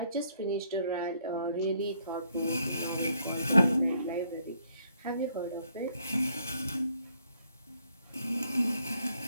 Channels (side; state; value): both; inverted; correlation -0.69